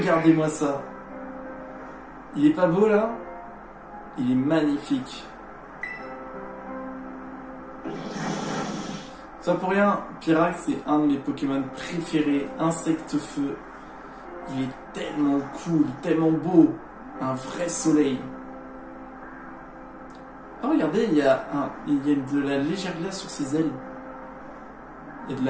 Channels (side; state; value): both; identical; correlation 1.00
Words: ça. Il est pas beau là? Il est magnifique. Ça pour rien, Pyrax c'est un de mes Pokémon préférés, Insecte-Feu. Il est tellement cool, tellement beau. Un vrai soleil. Oh regardez, il y a de la légère glace sur ses ailes. Il y